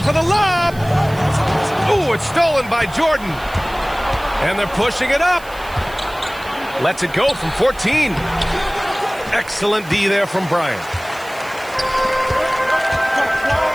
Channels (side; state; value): right; noise; hiss, 21 dB below the sound